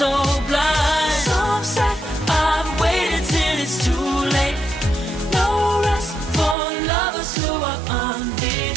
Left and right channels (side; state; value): left; drops out; at 6.6 s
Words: blind. So upset, I've waited till it's too late. No rest for lovers who are